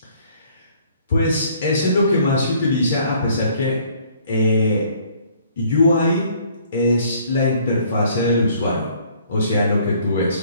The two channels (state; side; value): inverted; both; correlation -0.59